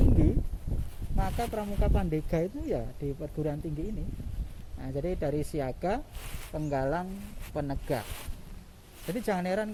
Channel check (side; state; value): both; identical; correlation 1.00